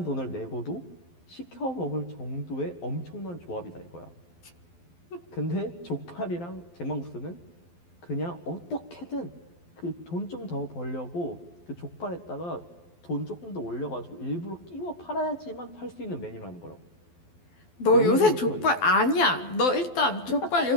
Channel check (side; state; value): right; late; 12 ms